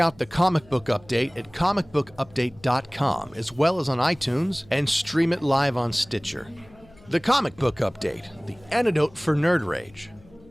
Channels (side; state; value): left; noise; hum, 25 dB below the sound